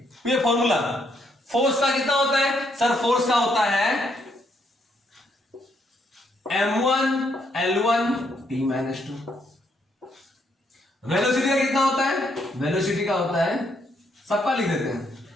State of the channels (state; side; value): normal; both; correlation 0.73